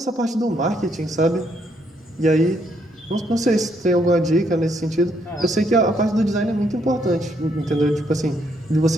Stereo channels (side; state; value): both; normal; correlation 0.73